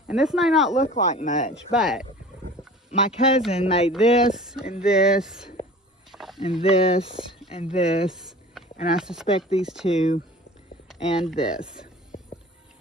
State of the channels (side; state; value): both; normal; correlation 0.42